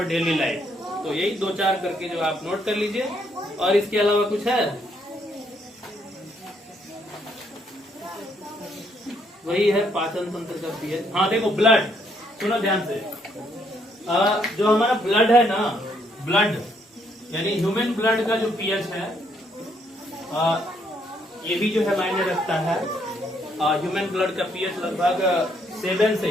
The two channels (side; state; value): both; normal; correlation 0.71